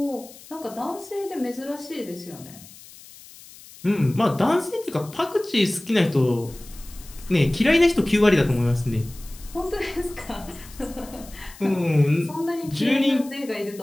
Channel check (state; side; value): noise; left; hiss, 20 dB below the sound